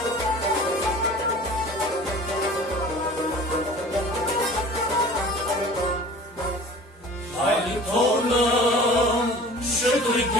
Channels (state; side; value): normal; both; correlation 0.43